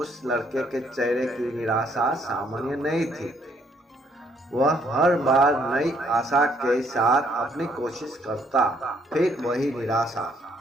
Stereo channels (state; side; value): normal; both; correlation 0.68